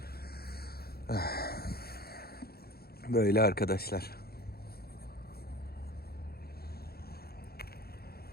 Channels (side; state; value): right; late; 0.45 ms